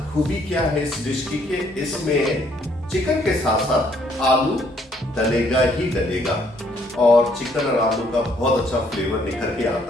खूबी क्या है इस डिश की कि इसमें चिकन के साथ साथ आलू डलेगा ही डलेगा और चिकन और आलू का बहुत अच्छा फ्लेवर निखर के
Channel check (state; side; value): normal; both; correlation 0.66